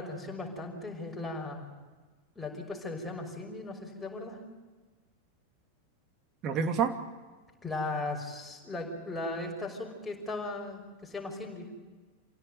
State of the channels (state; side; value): normal; both; correlation 0.35